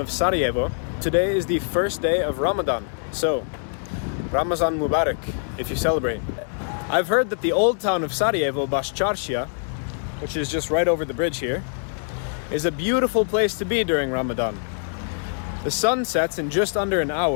Sarajevo. Today is the first day of Ramadan, so Ramazan Mubarak if you celebrate. I've heard that the old town of Sarajevo, Başçarşija, which is just right over the bridge here, is a beautiful place to be during Ramadan. The sun sets in just under an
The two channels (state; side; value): silent; right; digital silence